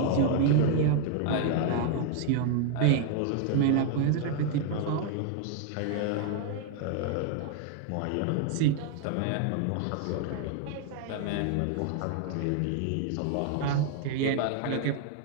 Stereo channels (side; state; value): both; different; correlation 0.00